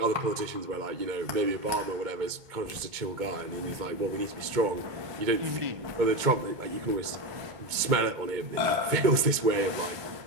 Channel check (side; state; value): left; late; 2.2 ms